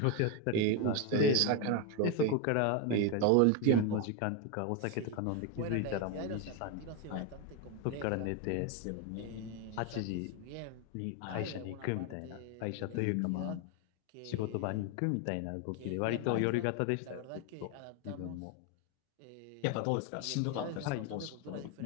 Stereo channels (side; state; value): both; different; correlation 0.02